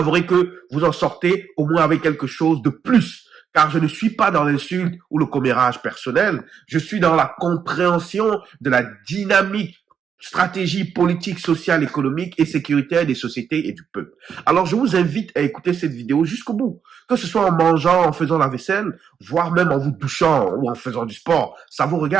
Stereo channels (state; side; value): quieter; left; 7.4 dB